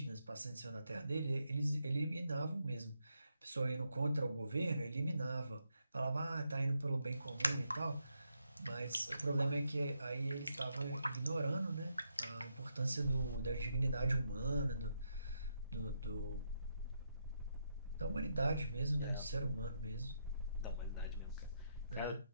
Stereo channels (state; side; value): inverted; both; correlation -0.81